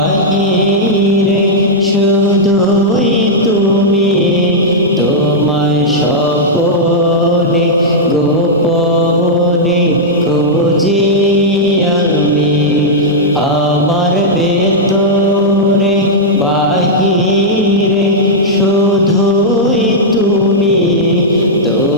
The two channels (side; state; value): both; normal; correlation -0.06